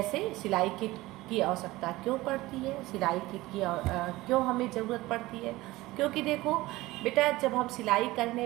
सिलाई किट की आवश्यकता क्यों पड़ती है, सिलाई किट की क्यों हमें ज़रूरत पड़ती है। क्योंकि देखो बेटा जब हम सिलाई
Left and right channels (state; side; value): quieter; left; 18.9 dB